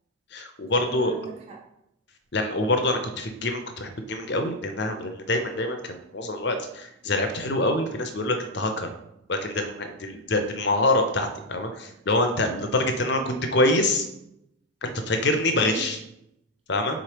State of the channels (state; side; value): normal; both; correlation 0.03